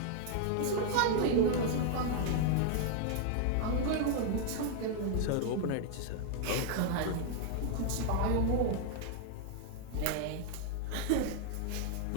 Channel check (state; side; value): different; both; correlation 0.00